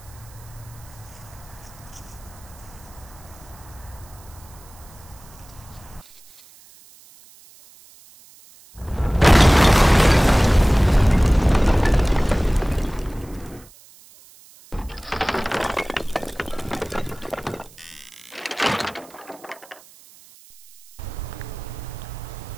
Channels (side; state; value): right; noise; hiss, 24 dB below the sound